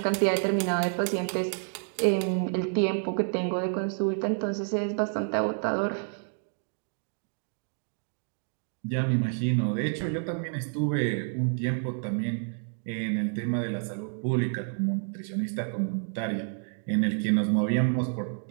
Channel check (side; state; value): left; silent; 55 dB below the other